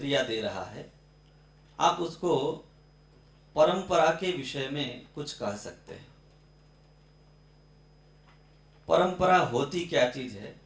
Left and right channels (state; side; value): identical; both; correlation 1.00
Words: दे रहा है। आप उसको परंपरा के विषय में कुछ कह सकते हैं। परंपरा होती क्या चीज है,